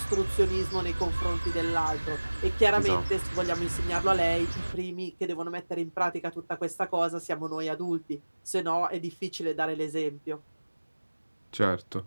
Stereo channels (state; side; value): inverted; both; correlation -1.00